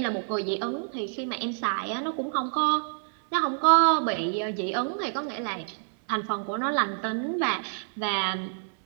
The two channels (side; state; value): left; silent; digital silence